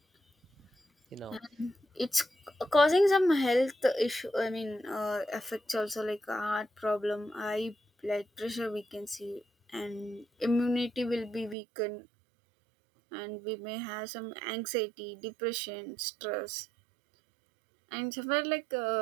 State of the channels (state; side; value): drops out; left; at 11.6 s